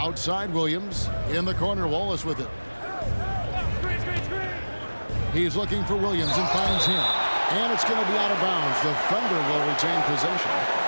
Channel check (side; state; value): both; inverted; correlation -1.00